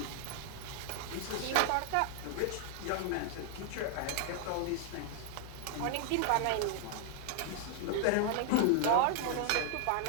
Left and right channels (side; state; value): both; different; correlation 0.00